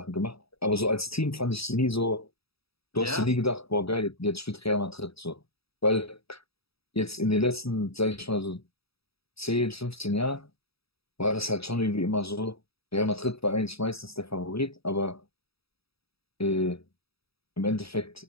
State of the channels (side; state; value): right; late; 0.77 ms